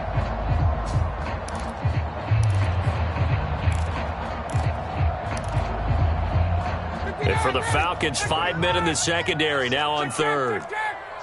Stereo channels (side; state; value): both; identical; correlation 1.00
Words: And for the Falcons, 5 men in the secondary, now on third.